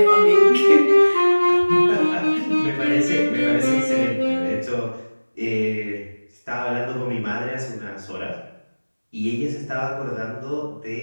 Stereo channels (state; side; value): inverted; both; correlation -1.00